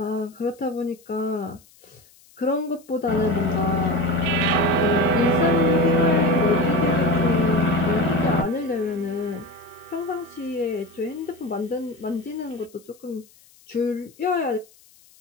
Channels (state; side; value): noise; left; hiss, 28 dB below the sound